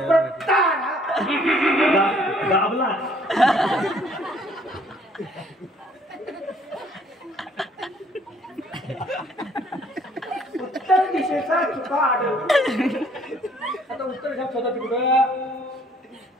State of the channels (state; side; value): normal; both; correlation 0.61